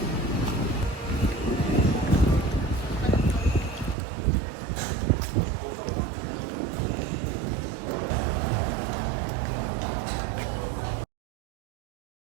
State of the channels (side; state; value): left; drops out; at 4.0 s